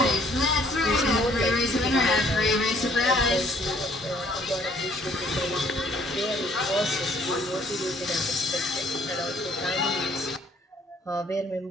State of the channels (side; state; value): both; normal; correlation 0.61